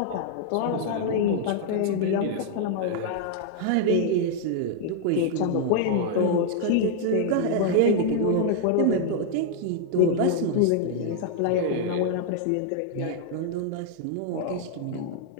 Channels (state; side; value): different; both; correlation -0.01